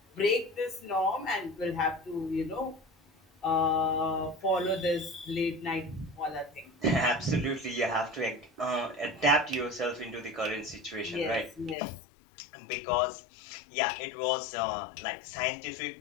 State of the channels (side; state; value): right; drops out; at 11.8 s